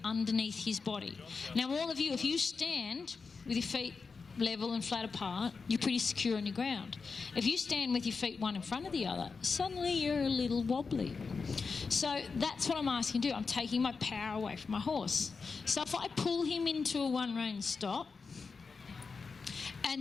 underneath his body. Now, all of you, if you stand with your feet level and flat apart, you're pretty secure on your ground. If you stand with your feet one in front of the other, suddenly you're a little wobbly. So that's what I'm asking to do. I'm taking my power away from my horse. So if I pull him into a one-rein stop,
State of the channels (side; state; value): right; quieter; 4.8 dB